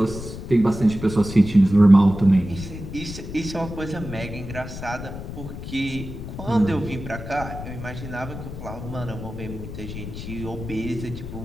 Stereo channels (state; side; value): noise; left; rumble, 9 dB below the sound